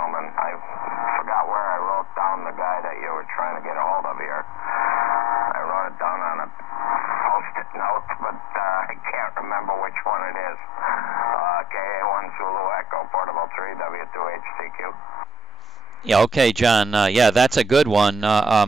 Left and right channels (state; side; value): normal; both; correlation 0.47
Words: I forgot where I wrote down the guy that you were trying to get a hold of here. Yeah, okay, John. Yeah, that's a good one.